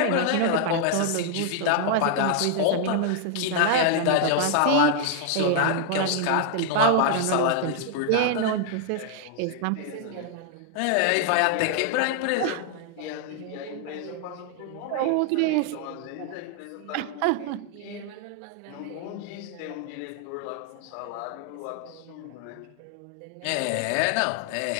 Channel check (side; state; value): both; different; correlation 0.00